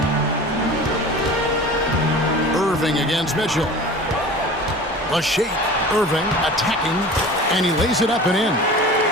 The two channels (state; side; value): normal; both; correlation 0.38